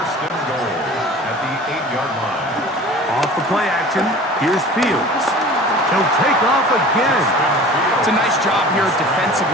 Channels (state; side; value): normal; both; correlation 0.42